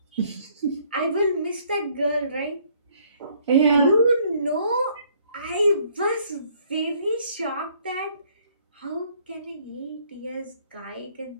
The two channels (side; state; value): both; inverted; correlation -0.64